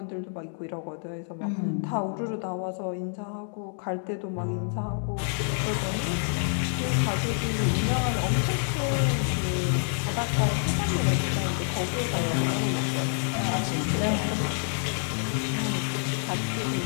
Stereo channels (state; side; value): silent; right; 60 dB below the other